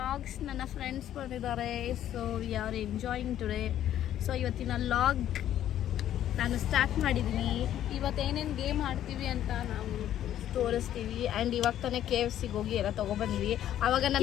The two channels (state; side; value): quieter; right; 11.5 dB